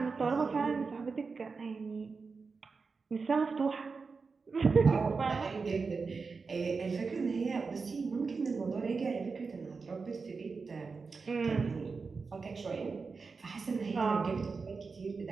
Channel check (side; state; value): left; quieter; 4.7 dB